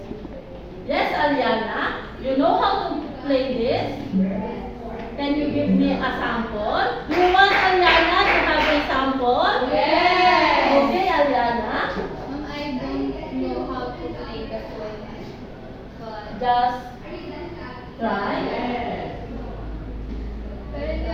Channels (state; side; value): identical; both; correlation 1.00